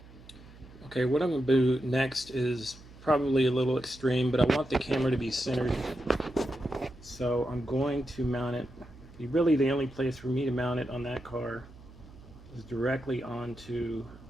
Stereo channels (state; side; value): noise; right; hum, 20 dB below the sound